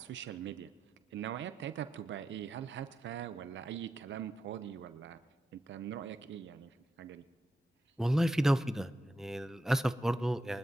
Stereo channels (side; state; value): both; normal; correlation 0.87